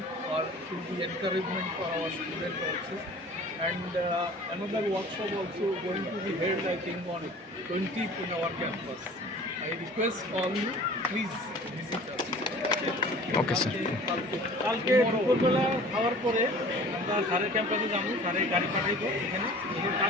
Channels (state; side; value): normal; both; correlation 0.45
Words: for the encouragement for our students also, and another workshop also going to be held, I think, on 20th in our campus. I request all you, please visit us. Okay sir. কালকে দুপুরবেলা খাওয়ার পরে আমরা স্যারের ক্যাম্পাসে যাবো, স্যারের গাড়ি পাঠাইবো এখানে, এখানে